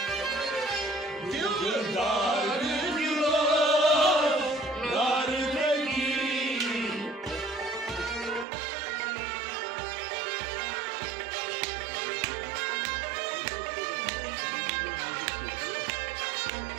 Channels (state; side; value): drops out; left; at 8.5 s